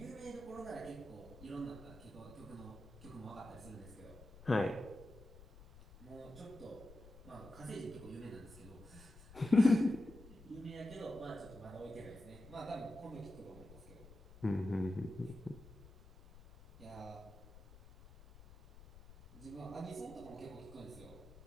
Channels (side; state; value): left; noise; rumble, 18 dB below the sound